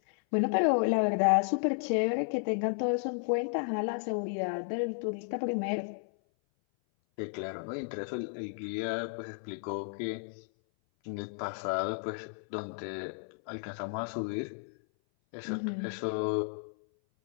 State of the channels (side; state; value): right; silent; 56 dB below the other